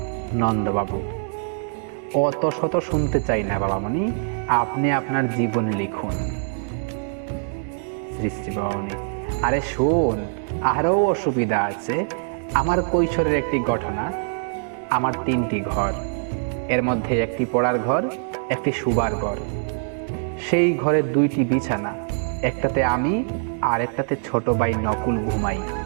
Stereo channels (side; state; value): left; silent; digital silence